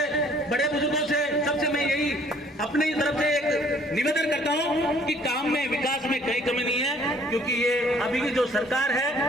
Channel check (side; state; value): both; normal; correlation 0.59